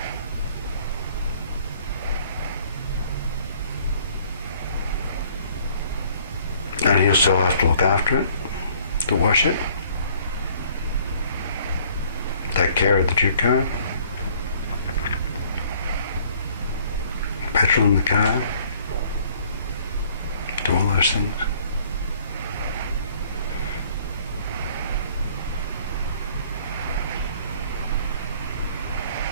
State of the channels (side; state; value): both; inverted; correlation -0.58